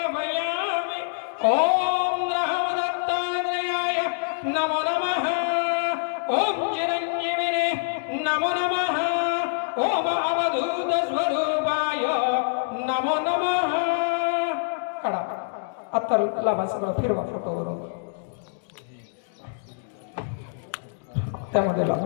ओम रामदत्तात्रेयाय नमो नमः ओम चिरंजीविने नमो नमः ओम अवधूत स्वरूपाय नमो नमः काढा आता लावा सगळं फिरवा फोटोवरून त्यामध्ये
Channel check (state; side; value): silent; right; digital silence